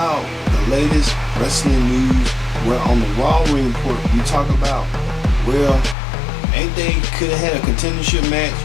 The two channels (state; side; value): drops out; right; at 6.0 s